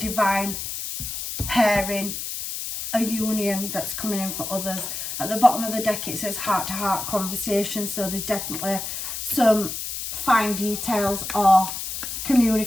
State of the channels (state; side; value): noise; left; hiss, 5 dB below the sound